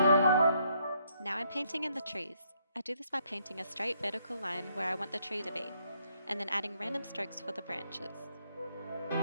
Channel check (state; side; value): inverted; both; correlation -0.72